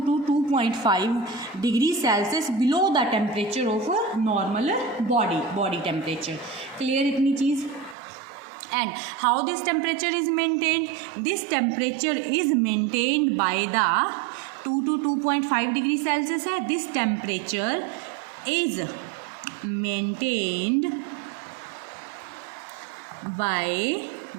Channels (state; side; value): drops out; left; at 8.0 s